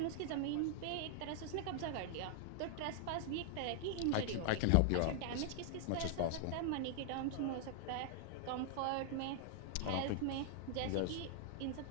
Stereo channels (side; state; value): both; different; correlation 0.00